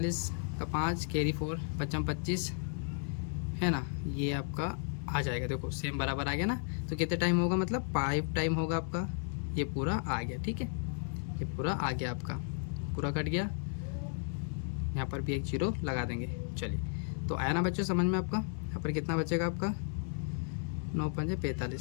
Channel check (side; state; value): right; silent; 55 dB below the other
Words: का 5 कैरी 4 55 25 है ना, ये आपका आ जाएगा। देखो सेम बराबर आ गया ना, तो कितने टाइम होगा, मतलब 5 टाइम होगा आपका, ये पूरा आ गया। ठीक है, ये पूरा आ गया आपका, पूरा कट गया। यहाँ पर भी एक जीरो लगा देंगे। चलिए, तो आया ना बच्चों समझ में आपका। यहाँ पर कितना बचेगा आपका, 9 5